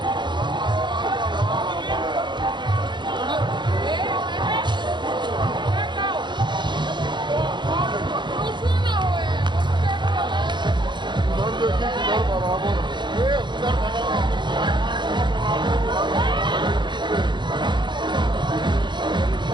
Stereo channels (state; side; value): late; left; 0.22 ms